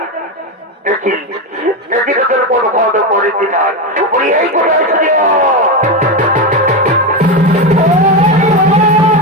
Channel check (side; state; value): both; normal; correlation 0.13